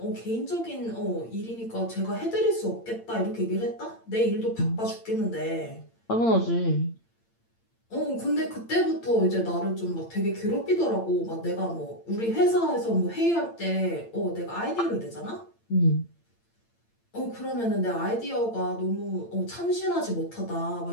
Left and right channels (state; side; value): late; right; 8.8 ms